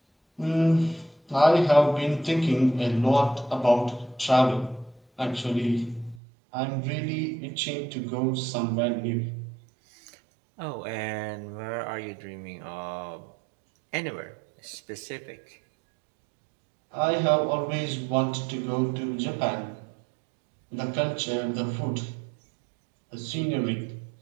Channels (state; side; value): drops out; left; at 6.2 s